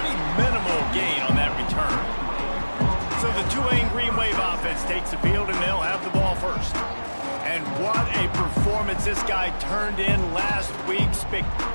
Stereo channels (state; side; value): inverted; both; correlation -1.00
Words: minimal gain on that return. So the Tulane Green Wave offense takes the field, and they'll have the ball first. And what a performance this guy turned in last week.